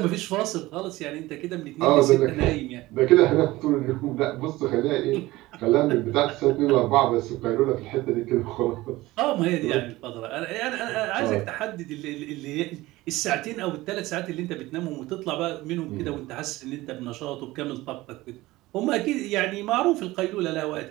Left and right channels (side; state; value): left; quieter; 18.7 dB